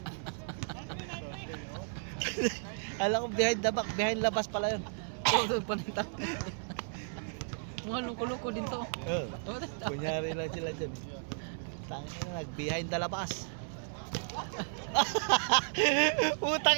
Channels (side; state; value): left; silent; 55 dB below the other